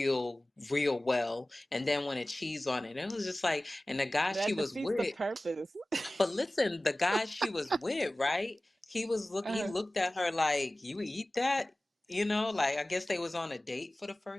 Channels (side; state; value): both; normal; correlation 0.98